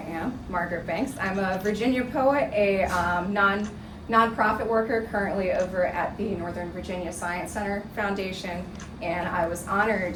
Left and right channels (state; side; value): identical; both; correlation 1.00